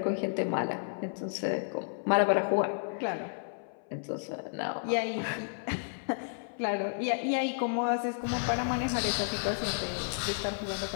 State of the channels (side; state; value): right; silent; 57 dB below the other